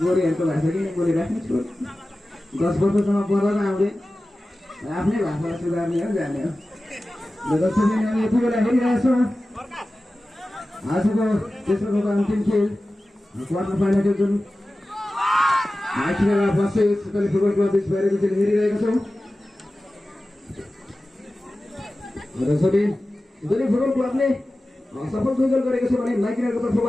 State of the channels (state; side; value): normal; both; correlation 0.95